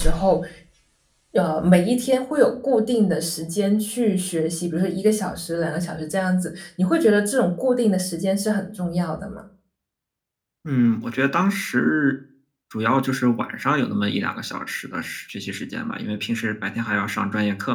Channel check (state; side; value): identical; both; correlation 1.00